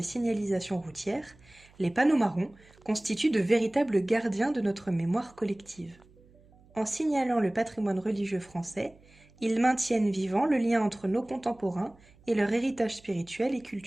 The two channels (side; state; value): right; noise; hum, 27 dB below the sound